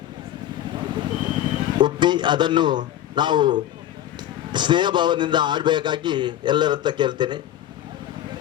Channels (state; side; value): quieter; right; 12.2 dB